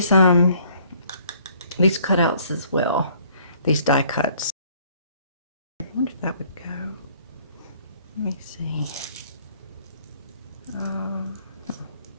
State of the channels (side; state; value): both; inverted; correlation -0.60